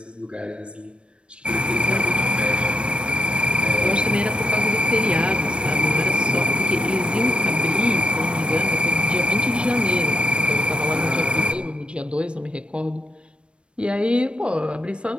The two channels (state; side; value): late; left; 0.058 ms